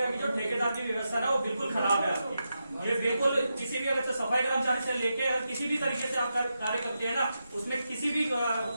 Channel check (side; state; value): both; inverted; correlation -0.87